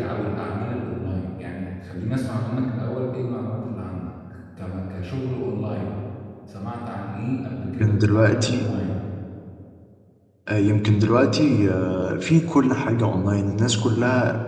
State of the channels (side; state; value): both; identical; correlation 1.00